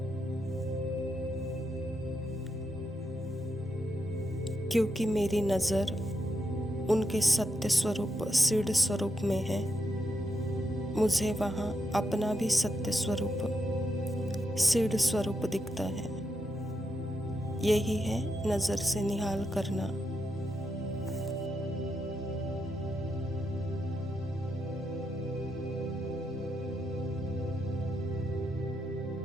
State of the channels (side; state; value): both; normal; correlation 0.83